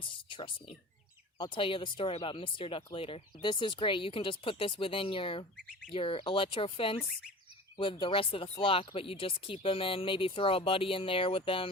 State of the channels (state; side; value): normal; both; correlation 0.37